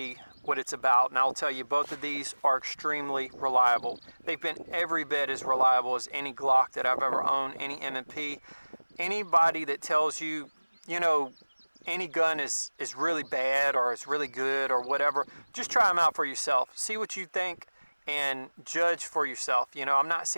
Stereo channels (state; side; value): inverted; both; correlation -1.00